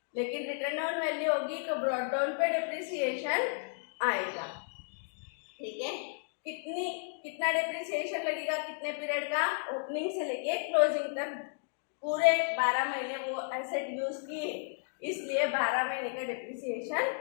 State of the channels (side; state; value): right; silent; digital silence